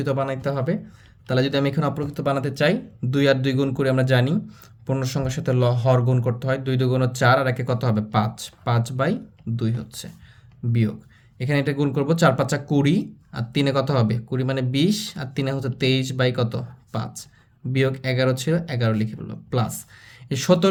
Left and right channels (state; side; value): identical; both; correlation 1.00